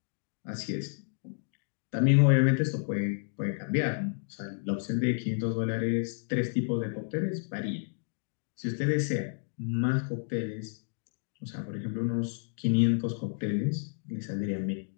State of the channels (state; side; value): silent; right; digital silence